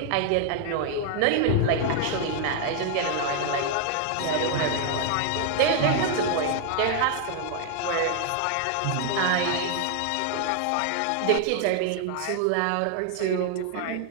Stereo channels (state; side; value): different; both; correlation 0.00